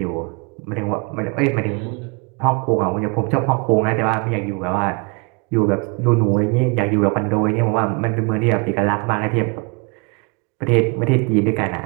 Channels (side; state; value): left; quieter; 31.4 dB